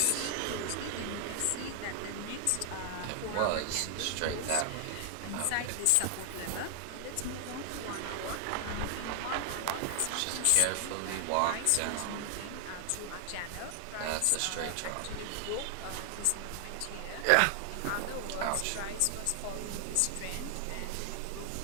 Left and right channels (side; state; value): both; different; correlation 0.00